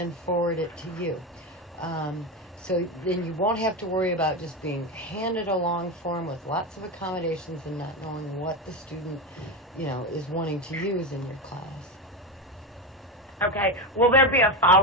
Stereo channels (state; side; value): normal; both; correlation 0.16